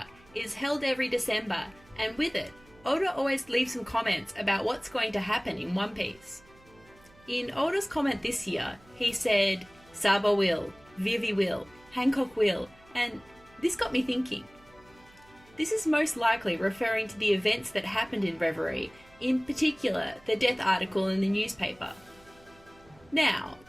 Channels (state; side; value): noise; right; hum, 27 dB below the sound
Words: is held every December, and with it, Oda always leaves some comments about what's going to happen in One Piece. In Oda's comment this year, he said, Sabo will, Vivi will, Hancock will, and this got me thinking. This is most likely referring to the events that happened in Reverie, in particular the death article in the newspaper. Now,